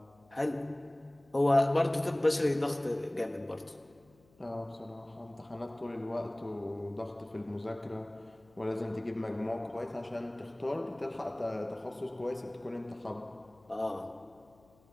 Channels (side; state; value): left; noise; hum, 30 dB below the sound